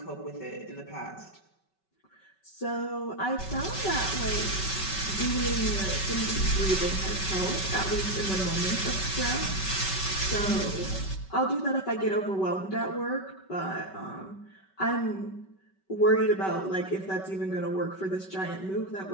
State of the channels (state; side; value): late; right; 5.2 ms